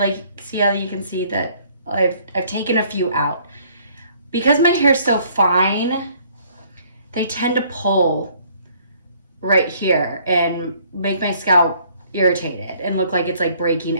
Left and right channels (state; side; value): inverted; both; correlation -0.61